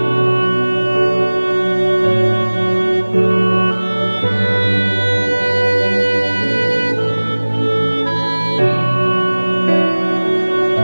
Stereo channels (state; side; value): inverted; both; correlation -1.00